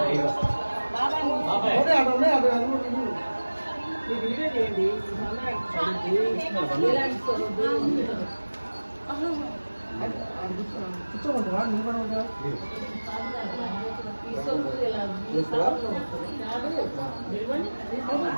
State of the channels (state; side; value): inverted; both; correlation -1.00